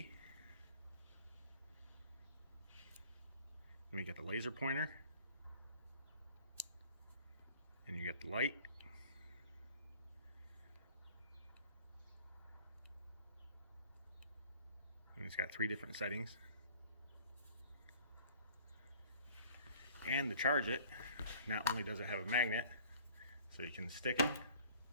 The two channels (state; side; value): inverted; both; correlation -0.51